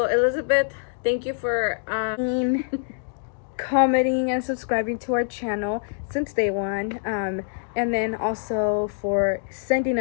Elizabeth, thank you for commenting and subscribing to our channel since day one, and then also for sending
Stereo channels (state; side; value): silent; right; digital silence